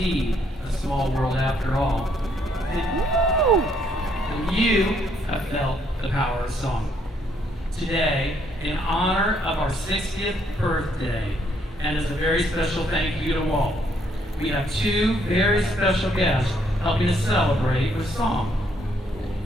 a small world after all, then you have felt the power of song. Today, in honor of our 60th birthday, and as a very special thank you to Walt, we have two very special guests helping us celebrate with song.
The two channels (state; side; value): normal; both; correlation 0.70